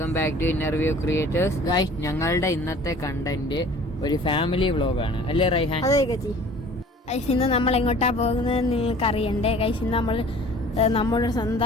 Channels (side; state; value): both; normal; correlation 0.48